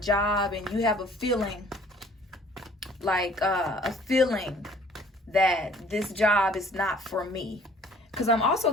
and you have a feeling, that this job is not for me, because I'm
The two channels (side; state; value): both; normal; correlation 0.54